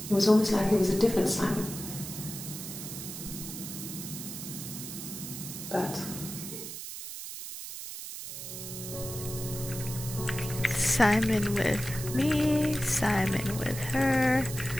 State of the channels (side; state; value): right; noise; hiss, 8 dB below the sound